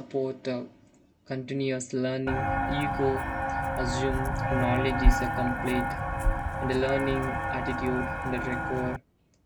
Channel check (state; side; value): identical; both; correlation 1.00